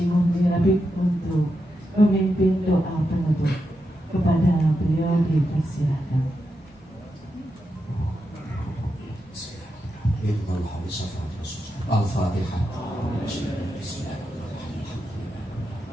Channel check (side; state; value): both; normal; correlation 0.86